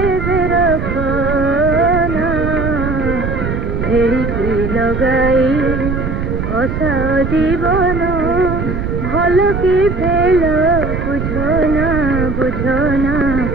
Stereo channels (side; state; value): right; noise; rumble, 3 dB below the sound